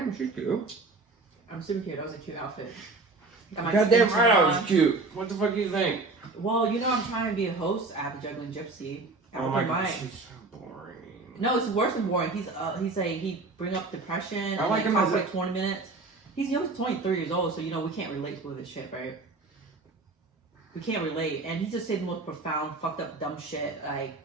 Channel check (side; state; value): left; quieter; 3.5 dB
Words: she's cute. I'm super cute. That was a cute outfit. Goddamn right, I was cute. What the fuck do you think? Well, you know I'm trying to be a host at the Juggling Gypsy. Oh my god, she's so boring. No, it's worse than boring. He's he bring up depression. I like him talk as for like 20 minutes. He's 23 years old, so you know we can't relate to this shit, right? We can't relate, and he just said the most profound, fucked up, dumb shit like